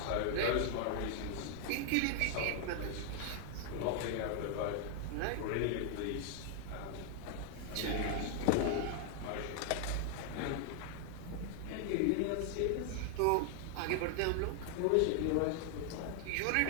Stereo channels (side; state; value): both; different; correlation 0.00